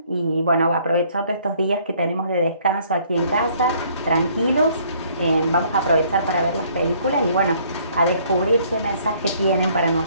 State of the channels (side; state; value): both; inverted; correlation -0.61